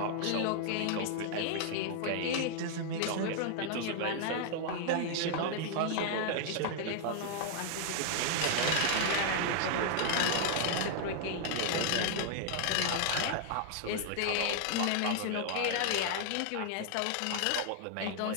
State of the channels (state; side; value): different; both; correlation 0.00